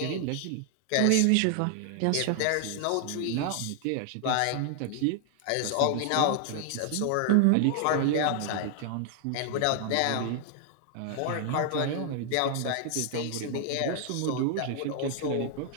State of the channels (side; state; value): both; different; correlation 0.00